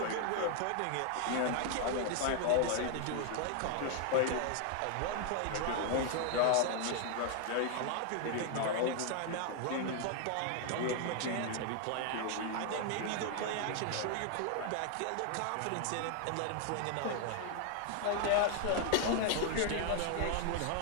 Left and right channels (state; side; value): different; both; correlation 0.00